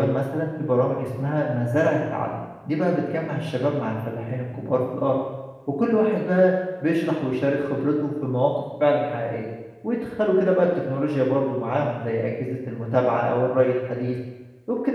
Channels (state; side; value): identical; both; correlation 1.00